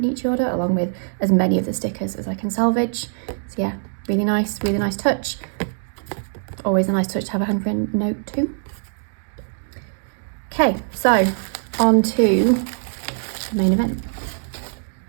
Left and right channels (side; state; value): left; silent; digital silence